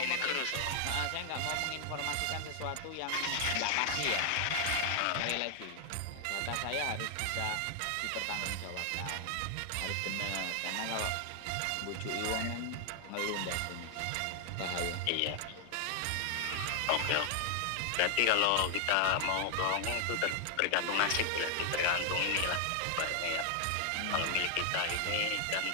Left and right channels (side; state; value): both; different; correlation 0.00